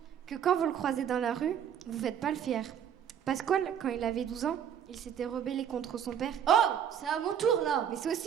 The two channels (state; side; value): quieter; left; 8.9 dB